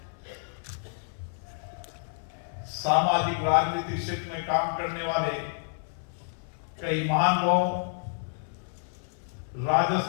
सामाजिक राजनीतिक क्षेत्र में काम करने वाले कई महान लोग,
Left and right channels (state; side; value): silent; right; 58 dB below the other